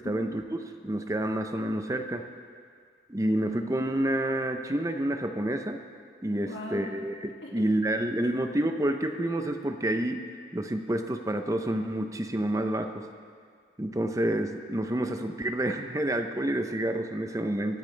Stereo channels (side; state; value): both; normal; correlation 0.79